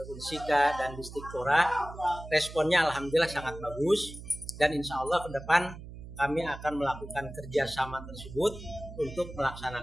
Unsika dan Distikpora. Responnya alhamdulillah sangat bagus dan insya Allah ke depan kami akan melakukan kerjasama tersebut untuk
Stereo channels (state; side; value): noise; right; hum, 13 dB below the sound